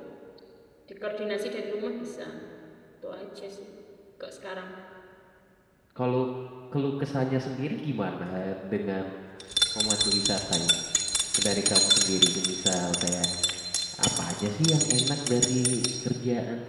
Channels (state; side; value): identical; both; correlation 1.00